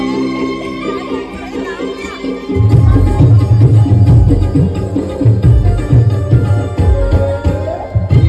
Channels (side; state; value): both; identical; correlation 1.00